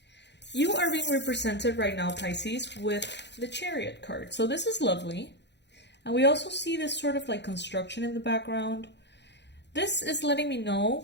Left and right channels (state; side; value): late; right; 0.50 ms